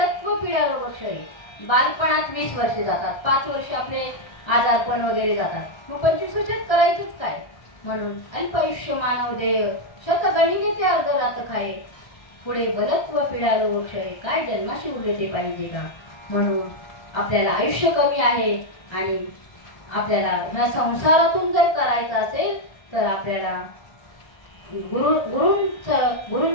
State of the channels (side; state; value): right; late; 1.7 ms